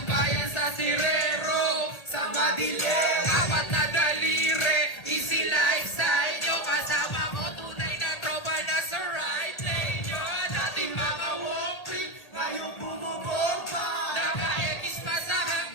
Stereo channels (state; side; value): late; right; 1.8 ms